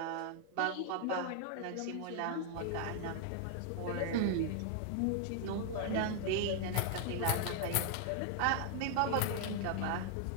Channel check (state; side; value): different; both; correlation 0.00